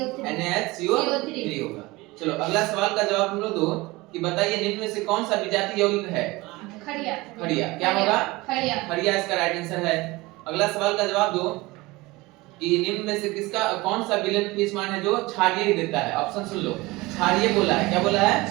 NaHCO3 होगा। चलो अगला सवाल का जवाब तुम लोग दो कि बताइए निम्न में से कौन सा विजातीय यौगिक है? खड़िया। क्या होगा? खड़िया इसका राइट आंसर है। अगला सवाल का जवाब दो कि निम्न में से किसका कौन सा विलयन पीएच मान है जो क्षारीय देता है? ऑप्शन सुन लो। क्षारीय बोला है। क्या बोला है?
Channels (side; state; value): left; quieter; 21.6 dB